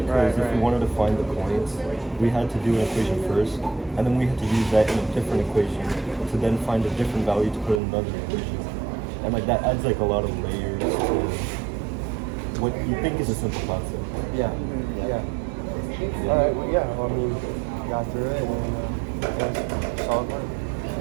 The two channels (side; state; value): left; drops out; at 7.8 s